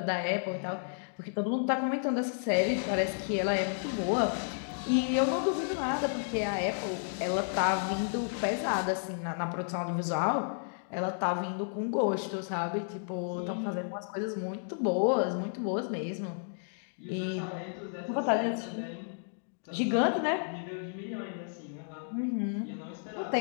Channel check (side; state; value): right; silent; digital silence